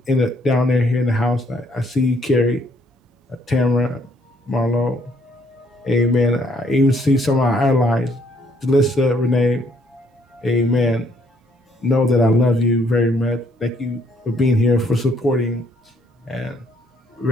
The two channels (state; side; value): normal; both; correlation 0.67